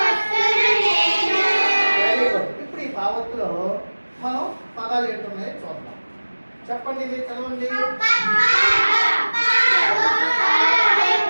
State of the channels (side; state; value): both; inverted; correlation -1.00